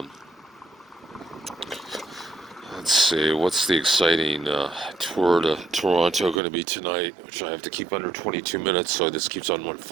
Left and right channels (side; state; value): left; drops out; at 6.4 s